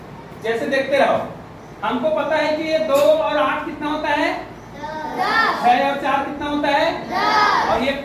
जैसे देखते रहो, हमको पता है कि ये 2 और 8 कितना होता है? 6 और 4 कितना होता है? और ये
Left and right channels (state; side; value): identical; both; correlation 1.00